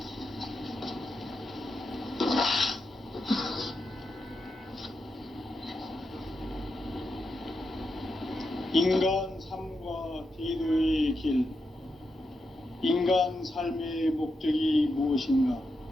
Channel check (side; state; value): both; normal; correlation 0.86